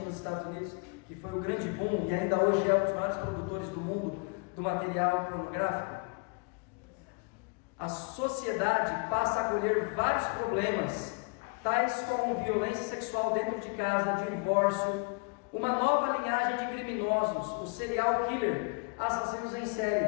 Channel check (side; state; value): right; quieter; 32.8 dB